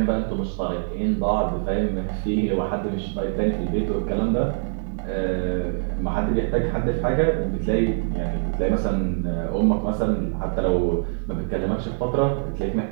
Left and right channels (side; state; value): left; silent; digital silence